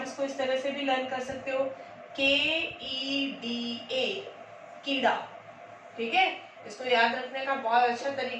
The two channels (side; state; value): both; identical; correlation 1.00